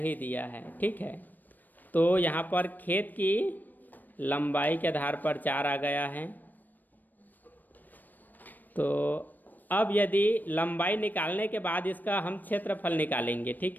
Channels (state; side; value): late; right; 0.088 ms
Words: दिया है, ठीक है। तो यहाँ पर खेत की लंबाई के आधार पर 4 आ गया है। तो अब यदि लंबाई निकालने के बाद इसका हम क्षेत्रफल निकालेंगे,